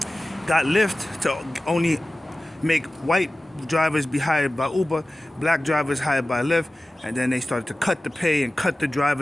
got Lyft to only make white drivers be hired by Uber, black drivers hired by Lyft, and then they started to cut the pay and cut the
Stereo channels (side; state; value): both; normal; correlation 0.96